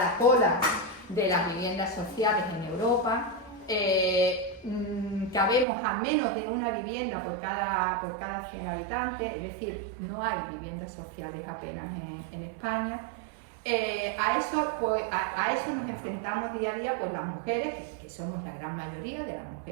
cola de las viviendas sociales en Europa. Cabemos a menos de una vivienda por cada 100 habitantes, es decir, no hay viviendas sociales apenas en España. A eso nos enfrentamos día a día pues las mujeres, que somos la gran mayoría de las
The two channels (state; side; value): drops out; left; at 5.7 s